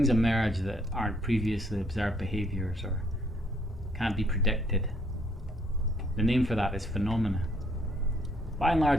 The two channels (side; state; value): both; normal; correlation 0.67